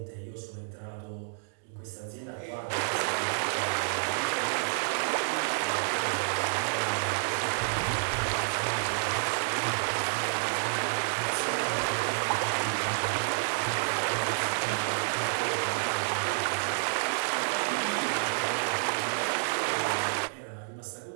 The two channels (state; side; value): silent; left; digital silence